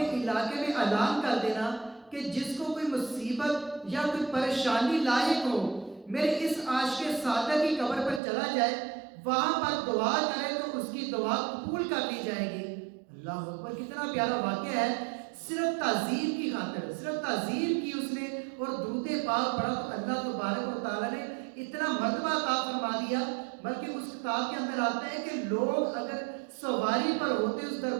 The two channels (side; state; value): left; drops out; at 8.2 s